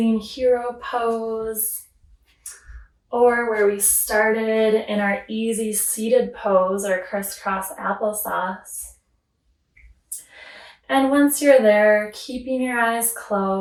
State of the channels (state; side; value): identical; both; correlation 1.00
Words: hero pose, or where we started in our easy seated pose or crisscross applesauce. And once you're there, keeping your eyes